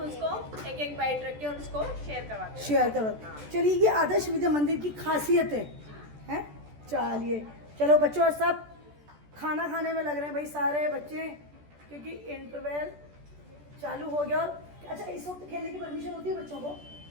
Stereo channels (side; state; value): left; late; 14 ms